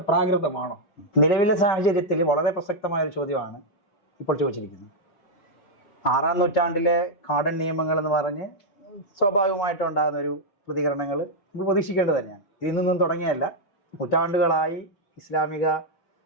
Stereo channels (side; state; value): right; late; 5.2 ms